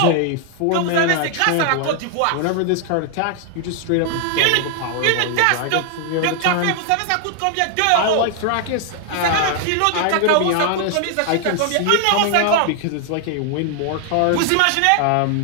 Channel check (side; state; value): both; different; correlation 0.00